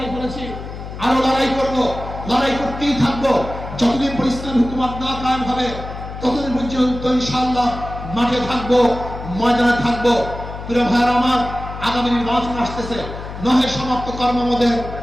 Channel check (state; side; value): noise; left; hum, 10 dB below the sound